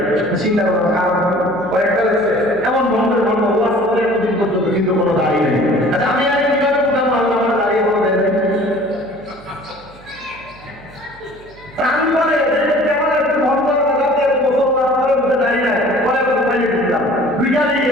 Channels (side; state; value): right; noise; hum, 24 dB below the sound